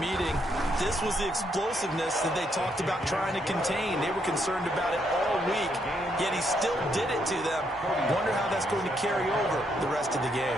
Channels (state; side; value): normal; both; correlation 0.75